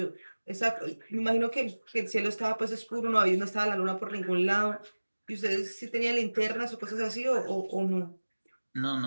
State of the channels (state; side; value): inverted; both; correlation -1.00